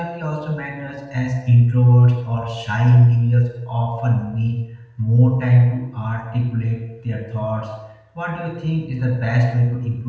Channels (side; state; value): both; identical; correlation 1.00